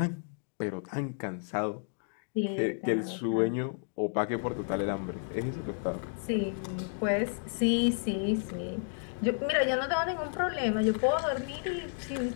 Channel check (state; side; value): silent; right; digital silence